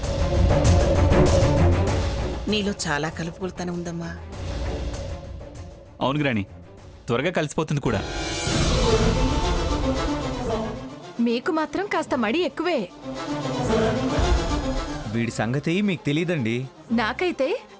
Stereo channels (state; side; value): identical; both; correlation 1.00